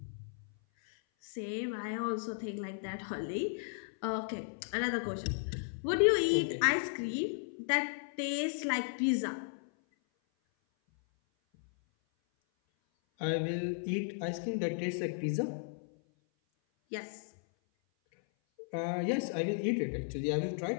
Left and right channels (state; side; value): silent; right; 54 dB below the other